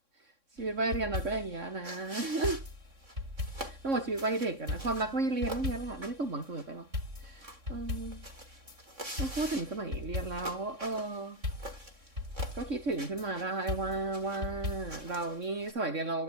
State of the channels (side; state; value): left; late; 3.6 ms